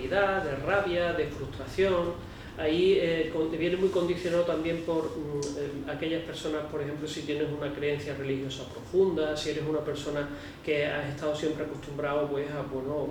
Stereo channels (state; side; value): identical; both; correlation 1.00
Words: de rabia, de frustración. Ahí viene muy condicionado también por aquellas personas, por ejemplo, si tienes una creencia religiosa profunda, si eres una persona que has estado siempre acostumbrado pues,